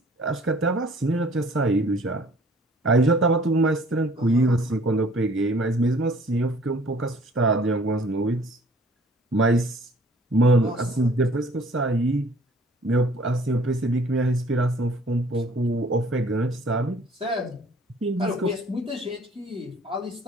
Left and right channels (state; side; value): normal; both; correlation 0.55